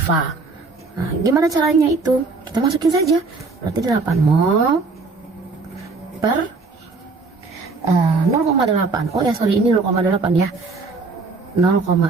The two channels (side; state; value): left; quieter; 4.0 dB